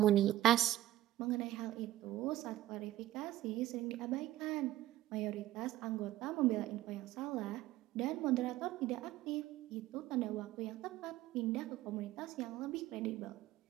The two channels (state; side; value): quieter; left; 14.6 dB